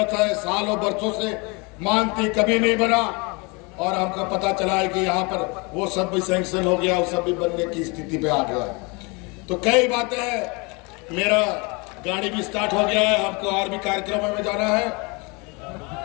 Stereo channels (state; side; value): quieter; right; 29.2 dB